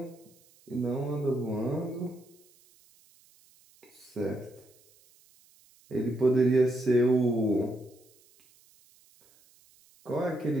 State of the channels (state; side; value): noise; right; hiss, 30 dB below the sound